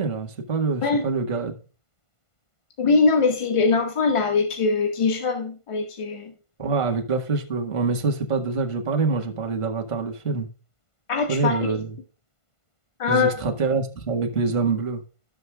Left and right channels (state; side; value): late; right; 1.5 ms